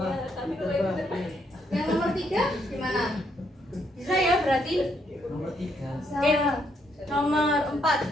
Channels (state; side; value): normal; both; correlation 0.74